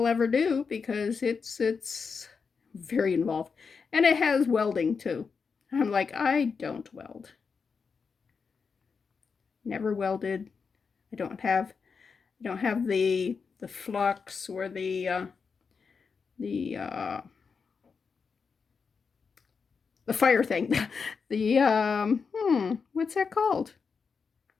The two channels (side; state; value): right; quieter; 5.4 dB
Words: ever do because it's very involved, and it has welding too. I'm like, I don't weld. Never welded. I don't have the flux or the fire thing. What's that called?